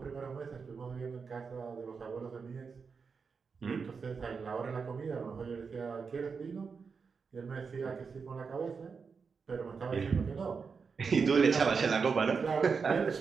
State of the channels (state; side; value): quieter; left; 5.4 dB